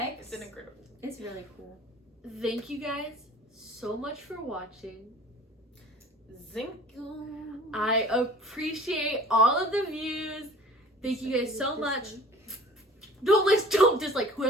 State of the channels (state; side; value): normal; both; correlation 0.45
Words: It's an incredible. It's really cool. Thank you guys so much for watching. Zinkum. I appreciate all of the views. Thank you guys so much. Don't dislike.